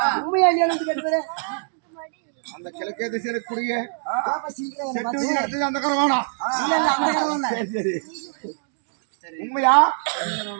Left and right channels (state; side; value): silent; left; digital silence